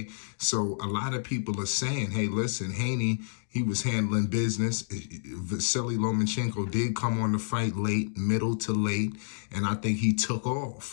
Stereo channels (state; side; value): silent; right; digital silence